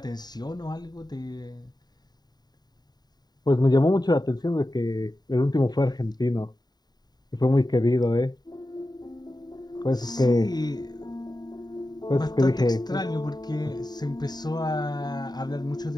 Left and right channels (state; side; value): late; right; 0.20 ms